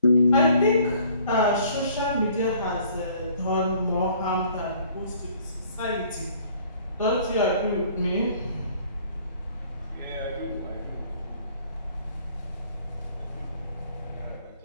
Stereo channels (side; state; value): both; inverted; correlation -0.57